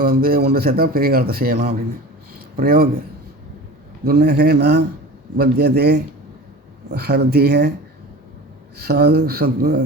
வந்து ஒன்று சேர்த்தால் பெரிய காலத்தை செய்யலாம் அப்படின்னு. பிரயோக துன்னகே ந பத்தியதே ஹர்திக சாது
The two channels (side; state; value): both; normal; correlation 0.35